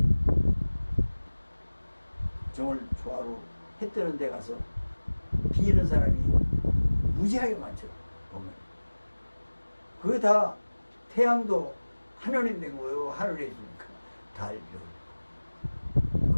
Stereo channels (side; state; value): both; inverted; correlation -1.00